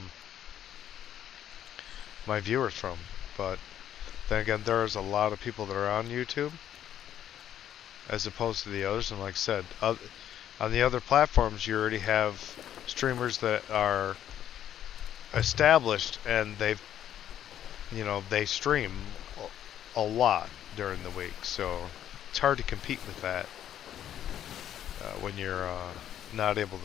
my viewers from. But then again, there's a lot of people that are on YouTube as opposed to the others, and like I said, on the other platforms you already have streamers that are established and they stream a lot during the week, so it's hard to compete with that when you're not able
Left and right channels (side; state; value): right; quieter; 10.7 dB